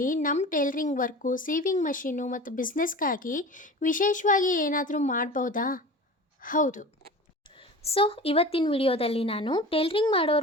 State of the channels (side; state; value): both; normal; correlation 0.36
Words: ನಮ್ಮ ಟೈಲರಿಂಗ್ ವರ್ಕು, ಸೀವಿಂಗ್ ಮಷೀನು ಮತ್ತು ಬಿಸ್ನೆಸ್ಗಾಗಿ ವಿಶೇಷವಾಗಿ ಏನಾದರೂ ಮಾಡ್ಬೋದಾ? ಹೌದು. ಸೊ ಇವತ್ತಿನ ವಿಡಿಯೋದಲ್ಲಿ ನಾನು ಟೈಲರಿಂಗ್